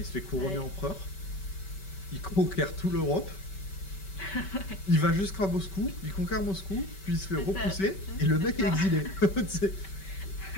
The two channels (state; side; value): late; right; 5.2 ms